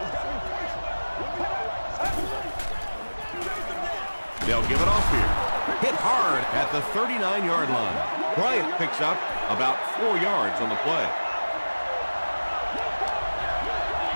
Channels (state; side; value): inverted; both; correlation -1.00